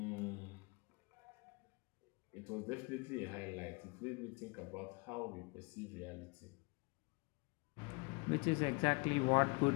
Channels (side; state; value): right; quieter; 29.8 dB